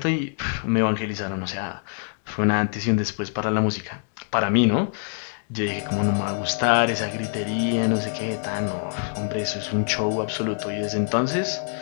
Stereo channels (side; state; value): right; silent; digital silence